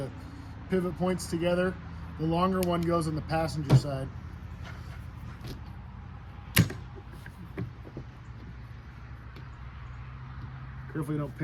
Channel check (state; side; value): identical; both; correlation 1.00